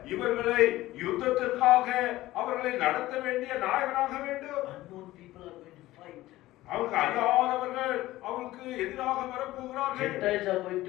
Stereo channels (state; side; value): quieter; right; 16.7 dB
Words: இவர்களை யுத்தத்திற்காக அவர்களை நடத்த வேண்டிய நாயகனாக வேண்டும். Unknown people are going to fight. அவருக்கு அறியாதவர்கள் அவருக்கு எதிராக வரப்போகிறார்கள். Gentiles are going